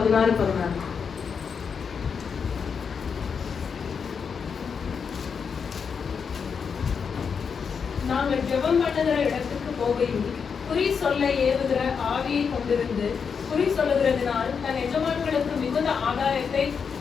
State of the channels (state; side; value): quieter; right; 6.2 dB